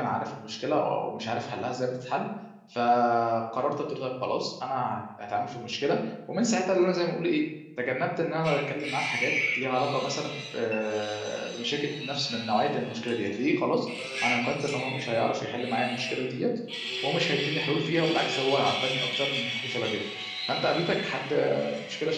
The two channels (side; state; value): both; identical; correlation 1.00